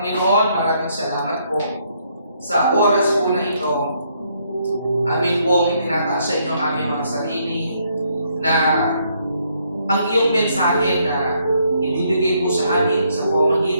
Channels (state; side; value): inverted; both; correlation -0.71